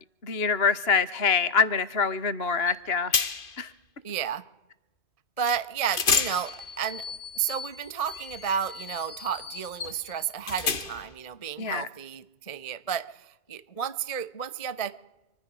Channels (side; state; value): right; late; 2.5 ms